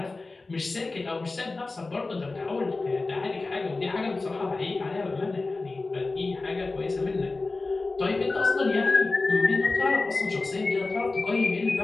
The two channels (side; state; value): right; quieter; 3.5 dB